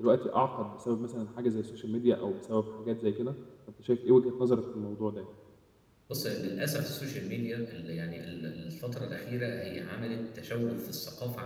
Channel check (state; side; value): identical; both; correlation 1.00